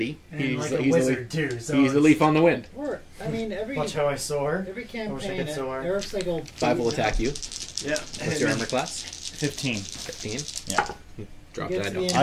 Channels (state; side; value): identical; both; correlation 1.00